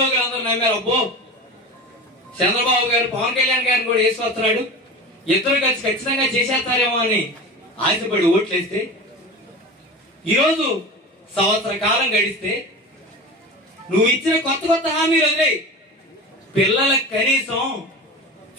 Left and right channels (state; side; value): normal; both; correlation 0.31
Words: అందరూ నమ్మారు. అబ్బో చంద్రబాబు గారు పవన్ కళ్యాణ్ గారిని కూడా వేసుకొస్తున్నాడు, ఇద్దరు కలిసి ఖచ్చితంగా చేసేస్తారేమో అని ఆశపడి ఓట్లేస్తే ఈరోజు సంవత్సర కాలం గడిస్తే నువ్వు ఇచ్చిన కొత్త హామీలు వదిలే పిల్లలకు కనీసం